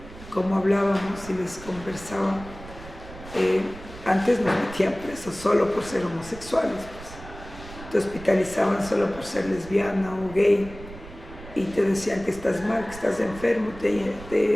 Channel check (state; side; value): noise; right; rumble, 16 dB below the sound